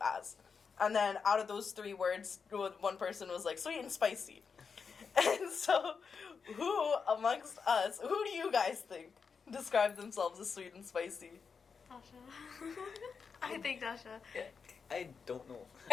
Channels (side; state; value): right; quieter; 5.7 dB